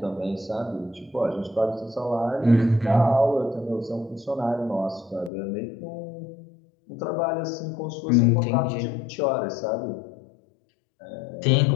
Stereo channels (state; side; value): drops out; right; at 5.3 s